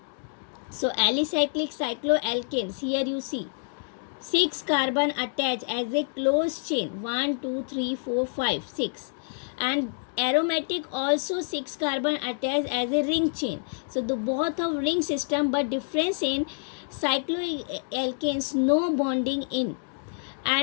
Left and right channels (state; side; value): silent; right; digital silence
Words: So alicyclic cycloalkanes, here you see 6 carbon attached as a closed chain, 1 2 3 4 5 6, and aromatic also 6 carbon attached as a ring chain. So the both of ring system, but difference in cycloalkanes no bonding in,